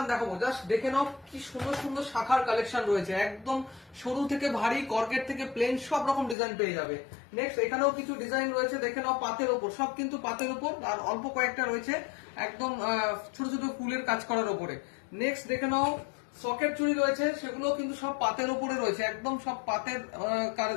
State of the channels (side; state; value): right; drops out; at 6.4 s